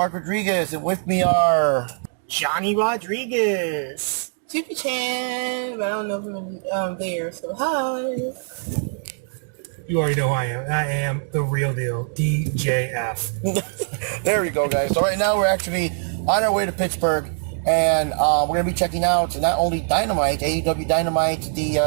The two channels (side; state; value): left; silent; 64 dB below the other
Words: Rodriguez, and with me are... Johnny Rodriguez. Jupi Chan, but I don't know if I'm there, so hi. You already know who I am. I am the real deal, DJF. There we go, guys. So right now we're actually on our way to Pittsburgh, and we're going to be checking out not only Dynamite, AEW Dynamite, today's